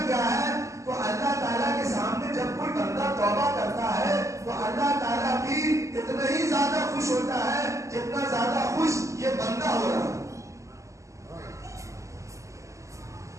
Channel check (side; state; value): left; late; 0.15 ms